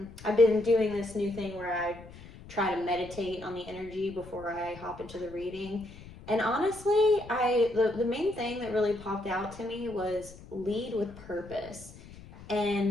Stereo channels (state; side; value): noise; left; rumble, 18 dB below the sound